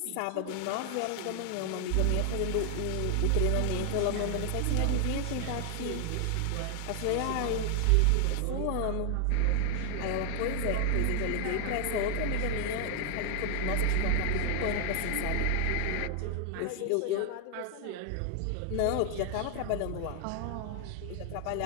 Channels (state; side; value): different; both; correlation 0.00